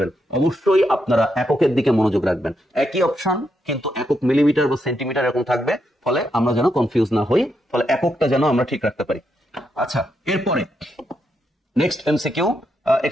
অবশ্যই আপনারা এককের দিকে মনোযোগ রাখবেন। একই অপশন কিন্তু একক মিলিমিটার বা সেন্টিমিটার এরকম থাকবে, ফলে আমরা যেন কনফিউজ না হই, ফলে এককটা যেন আমরা ঠিক রাখতে পারি। আচ্ছা, এরপরে নেক্সট এমসিকিউ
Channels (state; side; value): normal; both; correlation 0.81